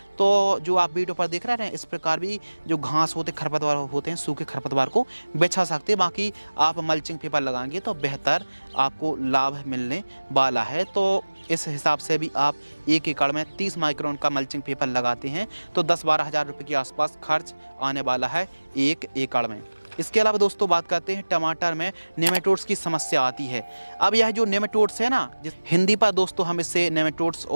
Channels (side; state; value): both; inverted; correlation -1.00